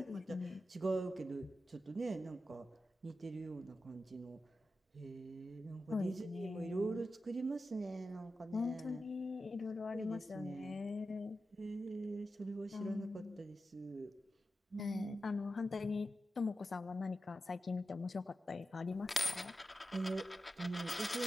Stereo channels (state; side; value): normal; both; correlation 0.91